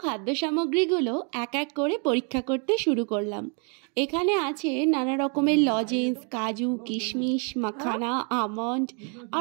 খাদ্য সামগ্রীগুলো এক এক করে পরীক্ষা করতে শুরু করলাম। এখানে আছে নানা রকমের লজেন্স, কাজু, কিশমিশ, মাখানা, আমন্ড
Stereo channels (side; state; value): left; quieter; 38.5 dB